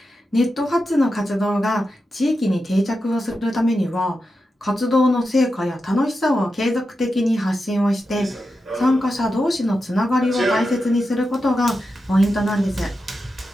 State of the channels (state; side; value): normal; both; correlation 0.89